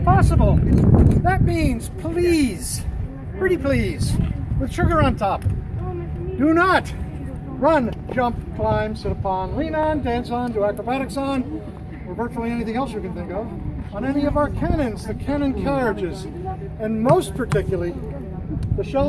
possible. That means please, pretty please, with sugar on top. Do not run, jump, climb, sit upon, lean on, dance on, do acrobatics on, or virtually anything else you can think of, on any of our cannons, the cannon carriages, and most particularly, the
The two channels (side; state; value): both; identical; correlation 1.00